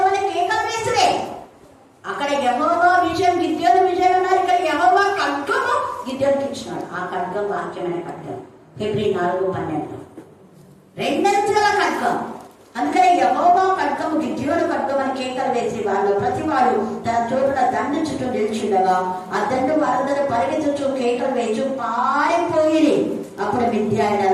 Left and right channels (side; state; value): both; identical; correlation 1.00